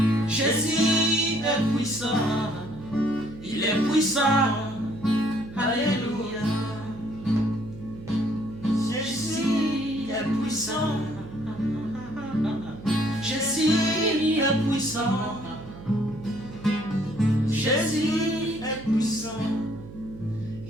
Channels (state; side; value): noise; right; hum, 15 dB below the sound